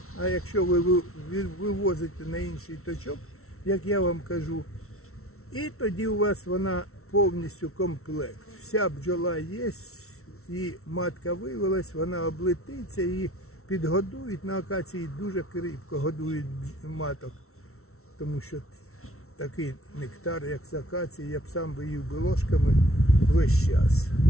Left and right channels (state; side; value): late; right; 0.63 ms